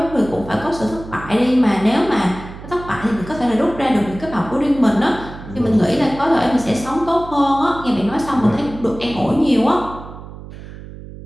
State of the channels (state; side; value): noise; right; hum, 14 dB below the sound